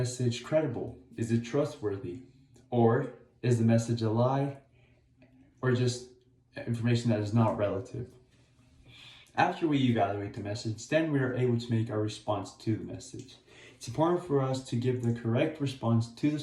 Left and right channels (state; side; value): identical; both; correlation 1.00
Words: credible? Is it trustworthy? Or is the message a lie? Or just information that is not relative? After we evaluate the message, then we are able to make our response to the message. It's important for us to give the correct response to the